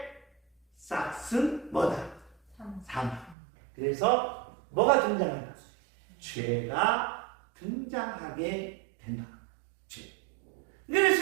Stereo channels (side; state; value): left; drops out; at 3.4 s